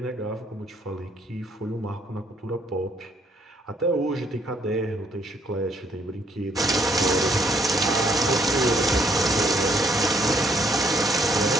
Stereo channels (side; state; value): both; normal; correlation 0.68